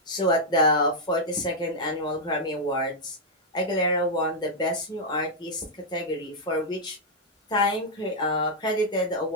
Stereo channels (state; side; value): normal; both; correlation -0.04